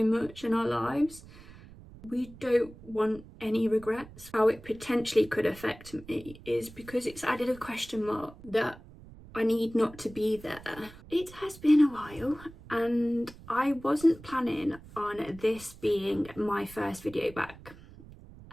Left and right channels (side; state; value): right; noise; rumble, 19 dB below the sound